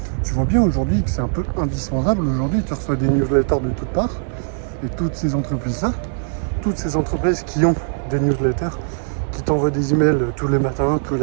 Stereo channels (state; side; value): silent; left; 57 dB below the other